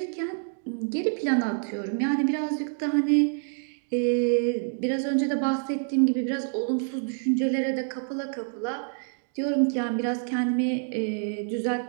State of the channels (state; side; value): silent; left; 57 dB below the other